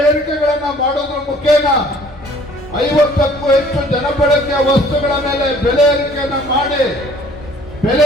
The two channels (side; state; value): both; normal; correlation 0.55